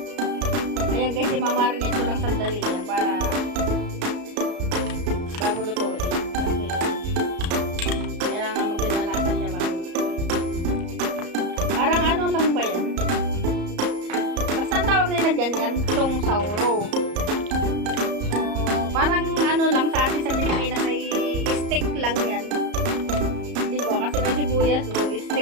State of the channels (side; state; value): left; late; 34 ms